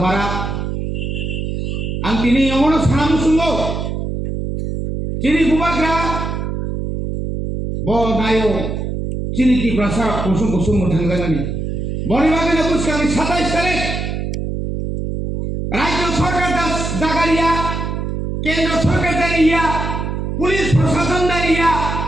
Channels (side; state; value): right; noise; hum, 3 dB below the sound